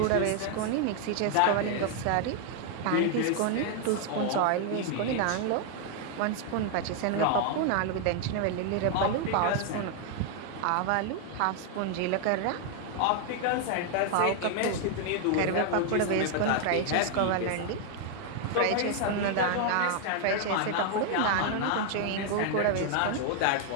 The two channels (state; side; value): different; both; correlation 0.00